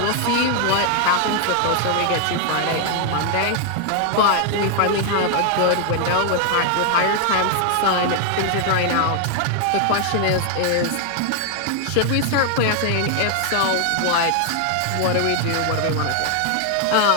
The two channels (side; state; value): both; different; correlation 0.00